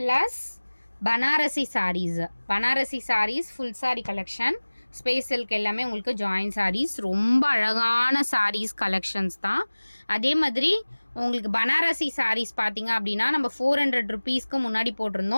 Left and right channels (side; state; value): both; inverted; correlation -1.00